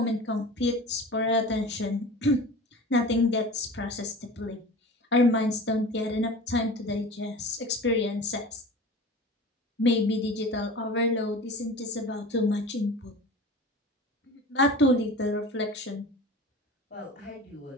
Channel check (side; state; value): both; normal; correlation 0.37